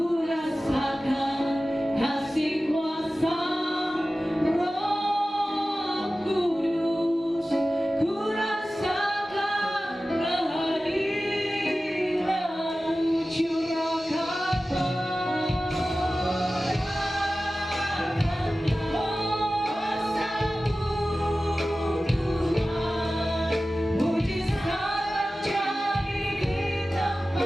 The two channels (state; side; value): normal; both; correlation 0.95